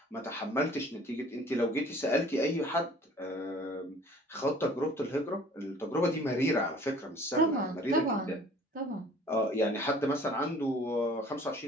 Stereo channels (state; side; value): normal; both; correlation 0.51